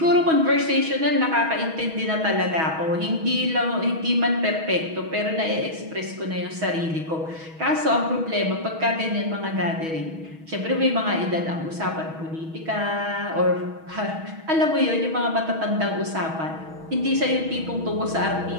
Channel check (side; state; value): left; late; 6.2 ms